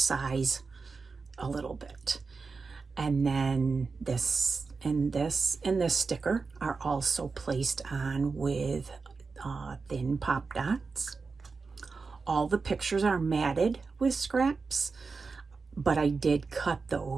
a little bit. And then this and this and this sticker are also placed on with thin pop dots. All the pictures are matted with scraps, but I did cut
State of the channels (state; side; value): quieter; left; 4.5 dB